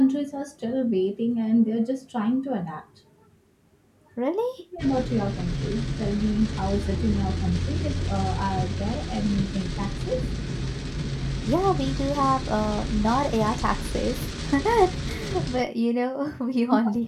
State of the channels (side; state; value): both; identical; correlation 1.00